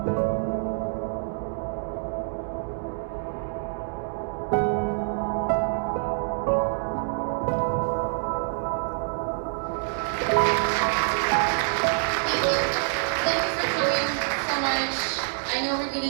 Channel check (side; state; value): left; silent; 61 dB below the other